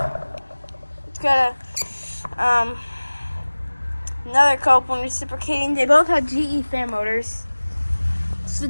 got a another Copeland reciprocating. They both have GE fan motors. It's the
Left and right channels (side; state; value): both; inverted; correlation -1.00